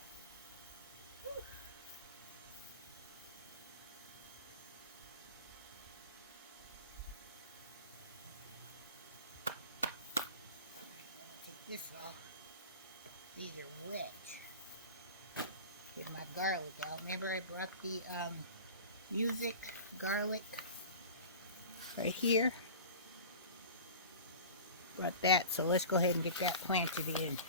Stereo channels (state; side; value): inverted; both; correlation -0.36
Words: this off. These are wet. Get my garlic out. Remember I brought the music garlic right here? Brought that, so let's go ahead and get that planted in.